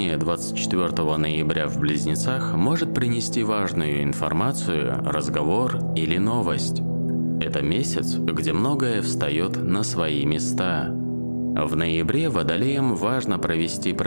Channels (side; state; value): both; inverted; correlation -1.00